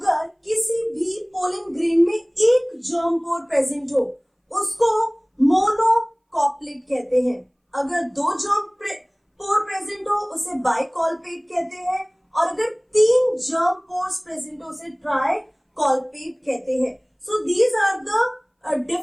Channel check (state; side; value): identical; both; correlation 1.00